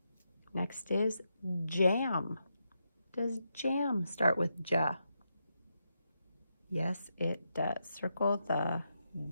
Next is jam. Does jam start with J? Yes, it does. Circle the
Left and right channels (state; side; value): inverted; both; correlation -0.84